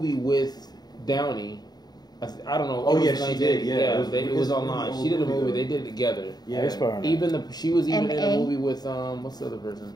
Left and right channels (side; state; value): right; late; 0.20 ms